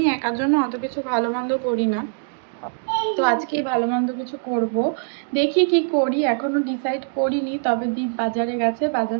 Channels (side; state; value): left; silent; digital silence